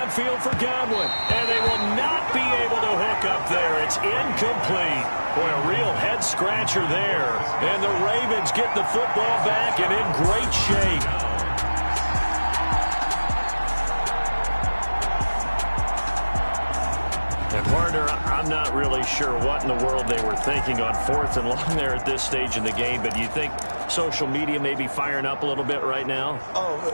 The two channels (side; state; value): both; inverted; correlation -1.00